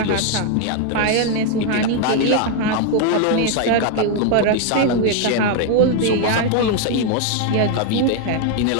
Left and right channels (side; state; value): both; different; correlation 0.01